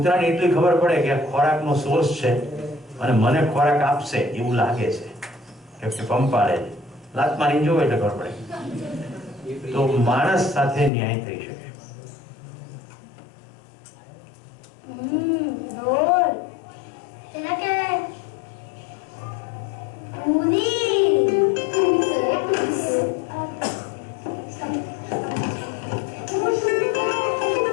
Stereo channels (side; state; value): right; drops out; at 10.9 s